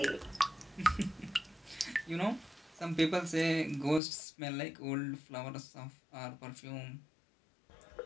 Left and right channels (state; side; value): drops out; right; at 4.0 s